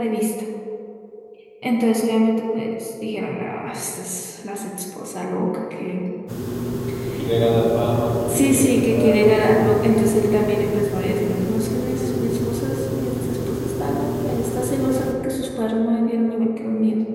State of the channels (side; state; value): both; identical; correlation 1.00